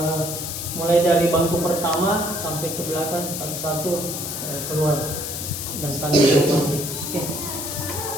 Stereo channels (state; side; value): noise; left; hiss, 5 dB below the sound